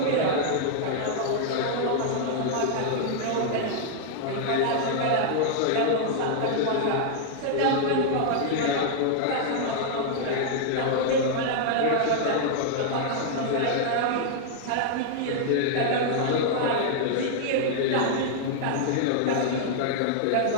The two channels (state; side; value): different; both; correlation -0.01